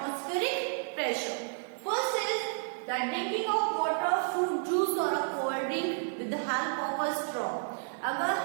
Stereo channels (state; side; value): silent; left; digital silence